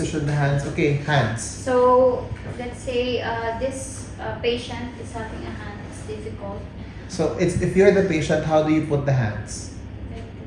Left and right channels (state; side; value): identical; both; correlation 1.00